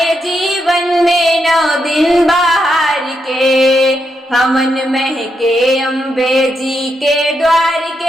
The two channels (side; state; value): both; normal; correlation 0.82